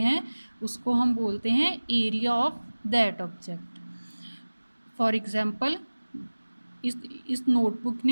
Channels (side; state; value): both; inverted; correlation -1.00